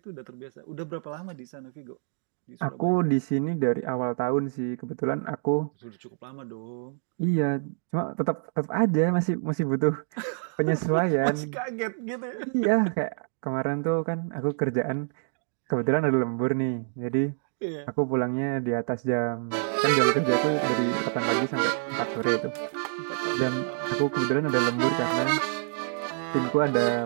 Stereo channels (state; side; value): silent; left; digital silence